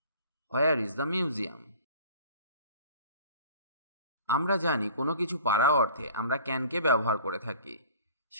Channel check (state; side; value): inverted; both; correlation -0.47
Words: Where is the museum? আমরা জানি কোনো কিছু পারা অর্থে আমরা ক্যানকে ব্যবহার করে থাকি।